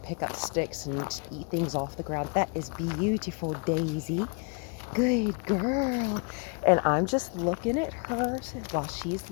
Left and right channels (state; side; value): quieter; right; 35.8 dB